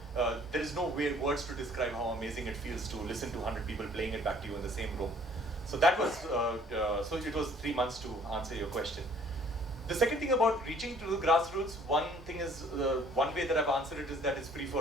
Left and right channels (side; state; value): both; normal; correlation 0.56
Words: there is no words to describe how amazing it feels to listen to 100 people playing it back to you in the same room. So that was, so it was 3 months to answer your question. The second thing about reaching to the grassroots, one thing is, one way that I've answered it is that it's free